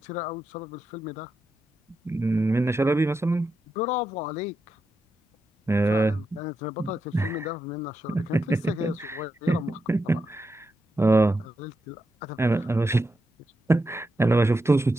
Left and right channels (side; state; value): both; normal; correlation 0.86